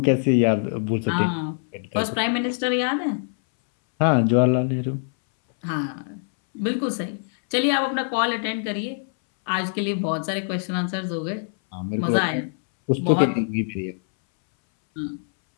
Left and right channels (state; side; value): silent; right; 62 dB below the other